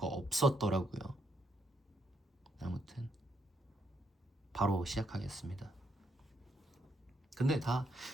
없었더라고요. 아무튼 바로 시작하겠습니다. 근데 다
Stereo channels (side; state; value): both; normal; correlation 0.76